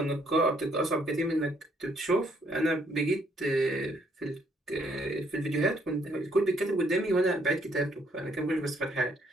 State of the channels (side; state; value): both; normal; correlation 0.69